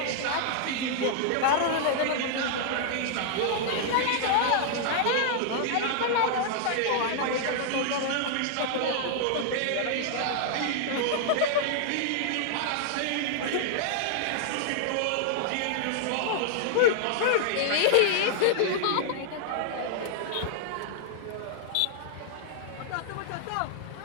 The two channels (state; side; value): different; both; correlation -0.01